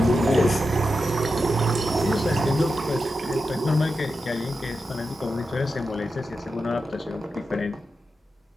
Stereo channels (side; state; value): both; normal; correlation 0.89